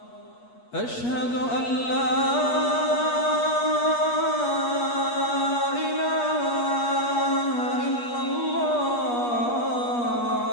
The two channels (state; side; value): late; right; 8.4 ms